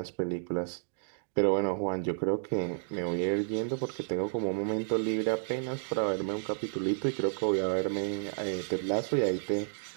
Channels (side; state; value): left; silent; digital silence